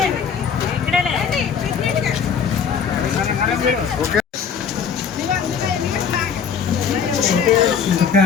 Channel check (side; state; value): right; quieter; 6.8 dB